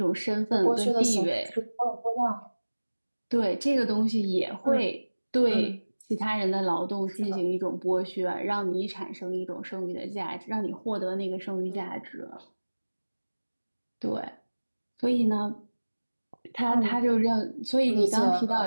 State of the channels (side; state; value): both; inverted; correlation -1.00